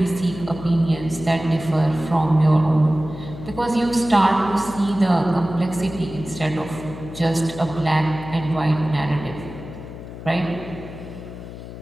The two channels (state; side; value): noise; left; hum, 12 dB below the sound